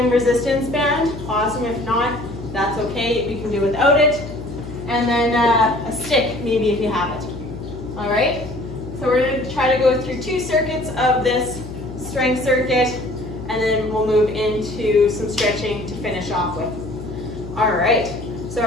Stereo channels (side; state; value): left; noise; hum, 11 dB below the sound